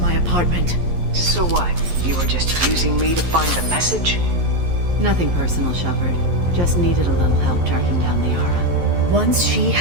apartment. So what? You were just using me to find the message? Nothing personal, Shepard. Just needed a little help tracking down Liara. Once she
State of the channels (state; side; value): late; left; 11 ms